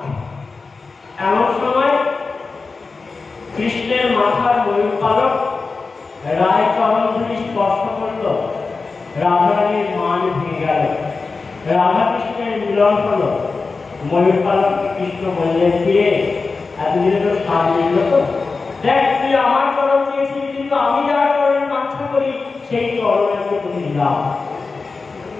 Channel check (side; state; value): right; quieter; 4.2 dB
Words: এমন সময় কৃষ্ণের মাথার ময়ূর পালক রায় চরণ ধুলি স্পর্শ করল, রাধারানীর মান ভেঙে গেল। রাধা কৃষ্ণের মিলন হলো। ময়ূর পালক কৃষ্ণ বললেন, ফিরে এতদিনে তো স্বাদ মিলল তো, দেখ তুই আমার চরণ চেয়েছিলি, কিন্তু আমি যার চরণ কাঙ্ক্ষা করি সেই চরণকে তুমি দিলাম।